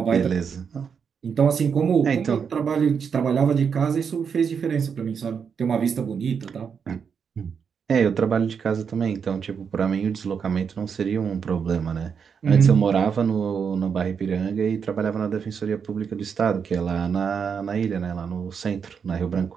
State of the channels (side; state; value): left; quieter; 6.6 dB